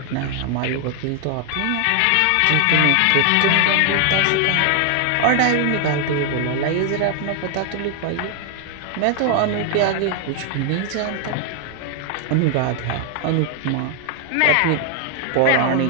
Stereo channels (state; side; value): different; both; correlation 0.00